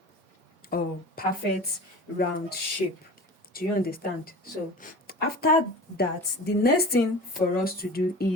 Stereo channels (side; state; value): both; normal; correlation 0.36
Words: perfect round shape. Do you understand? So after that, the next thing for us to do